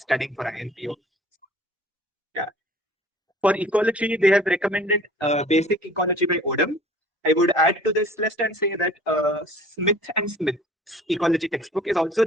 for INPhO. Yeah. For ecology, they have recommended Basic Ecology by Odom. I would add to this list and say that Smith and Smith's ecology textbook is also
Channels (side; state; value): both; normal; correlation 0.49